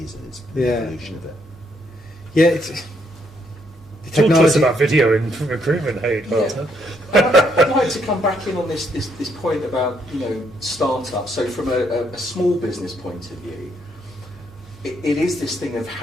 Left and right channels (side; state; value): both; normal; correlation 0.73